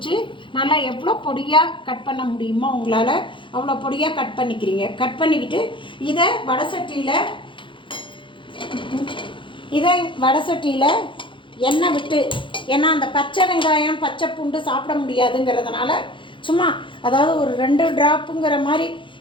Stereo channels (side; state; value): right; late; 0.24 ms